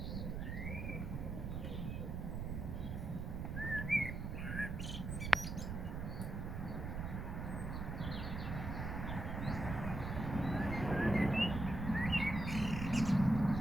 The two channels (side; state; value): right; noise; rumble, 4 dB below the sound